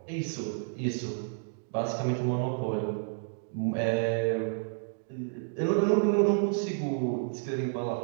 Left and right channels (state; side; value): silent; left; digital silence